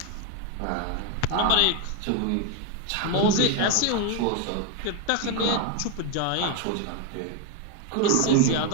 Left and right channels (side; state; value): both; different; correlation 0.01